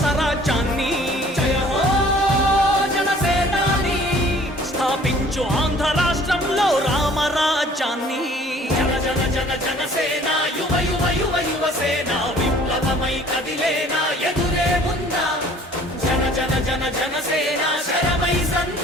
రాజ్యాన్ని జయ హో జనసేనాని స్థాపించు ఆంధ్ర రాష్ట్రంలో రామరాజ్యాన్ని జన జన జన జనసేన యువ యువ యువ యువసేన విప్లవమై కదిలేనా ఎదురే ఉందా జన జన జన జనసేన శరమై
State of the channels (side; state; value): both; normal; correlation 0.53